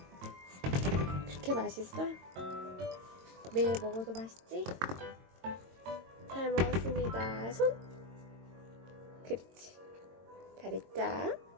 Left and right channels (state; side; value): late; left; 22 ms